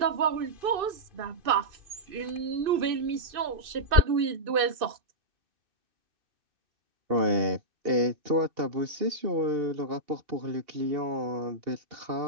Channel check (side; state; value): left; late; 2.6 ms